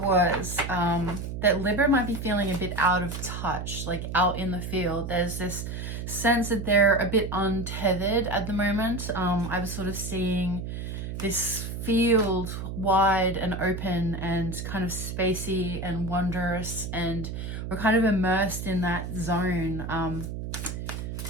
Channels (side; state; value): right; noise; hum, 6 dB below the sound